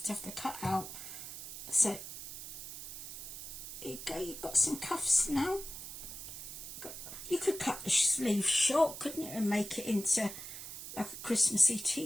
to have the cut out. So, there you go. You've got some cuffs now. You could cut the sleeves short, couldn't you, and make it into like a Christmassy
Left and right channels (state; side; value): noise; right; hiss, 9 dB below the sound